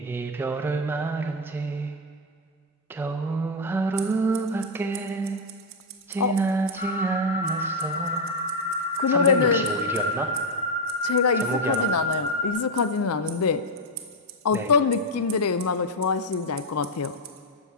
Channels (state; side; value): normal; both; correlation 0.02